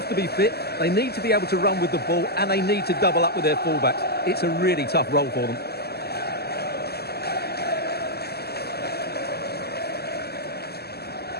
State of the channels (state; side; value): late; right; 0.46 ms